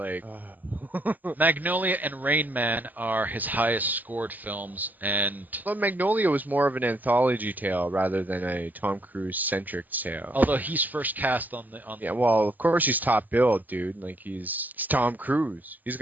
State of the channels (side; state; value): left; late; 0.083 ms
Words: Magnolia and Rain Man are his highest scored films, and Well, Magnolia was more of an anthology tale rather than a Tom Cruise centric tale. although he's first cast on the Yeah, well, of course he's top billed, dude. He's Tom Cruise. He's